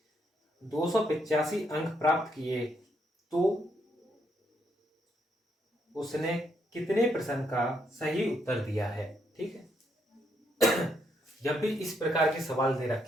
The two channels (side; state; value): both; normal; correlation 0.76